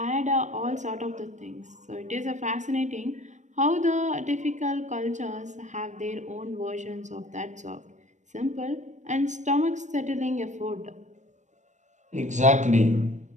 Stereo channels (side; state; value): left; late; 0.35 ms